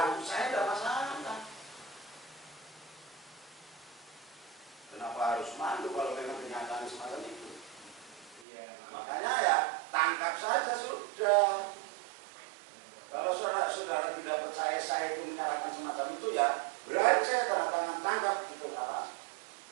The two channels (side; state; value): left; drops out; at 8.5 s